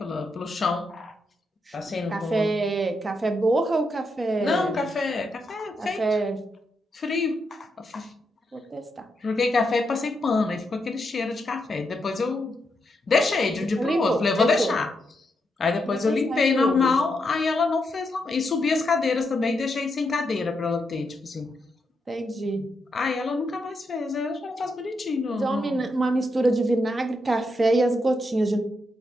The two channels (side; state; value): both; normal; correlation 0.82